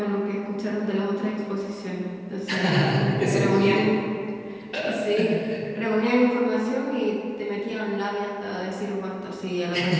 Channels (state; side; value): identical; both; correlation 1.00